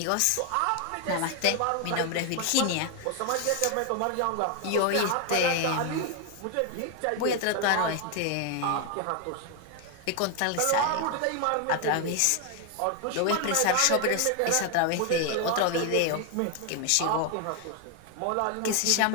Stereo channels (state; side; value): different; both; correlation 0.01